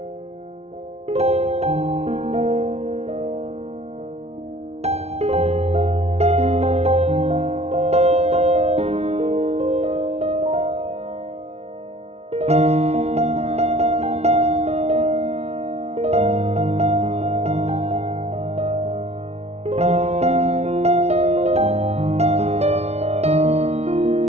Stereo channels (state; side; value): late; left; 0.31 ms